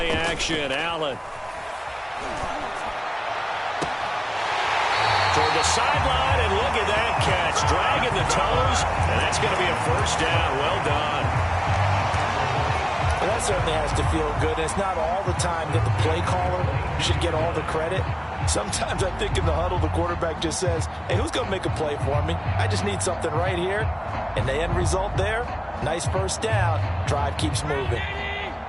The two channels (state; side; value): identical; both; correlation 1.00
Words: action, Allen. Toward the sideline, and look at that catch. Dragging the toes, and that's going to be a 1st down. Well done. Well, that certainly has to feel good. And it's not all the time that the play caller should get all the credit. Sometimes I think in the huddle, the quarterback just says, hey, who's going to make a play for me? I just need something right here. And the end result there, nice 1st down. Drive keeps moving.